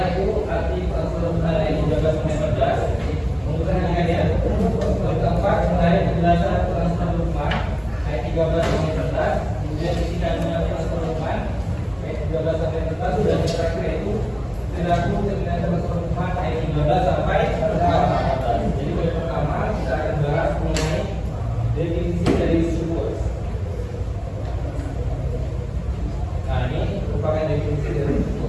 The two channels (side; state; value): both; identical; correlation 1.00